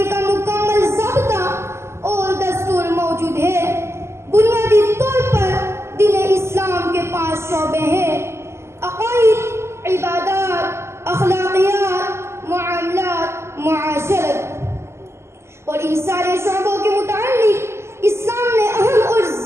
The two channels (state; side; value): late; left; 0.13 ms